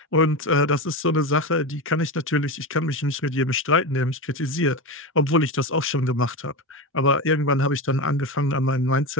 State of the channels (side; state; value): both; normal; correlation 0.20